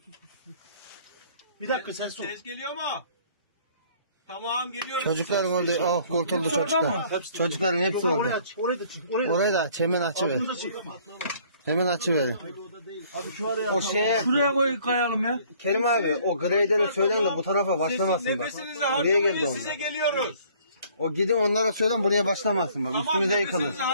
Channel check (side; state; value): both; inverted; correlation -0.58